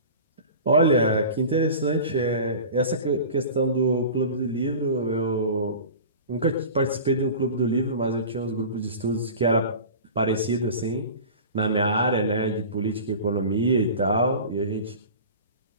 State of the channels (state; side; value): inverted; both; correlation -0.36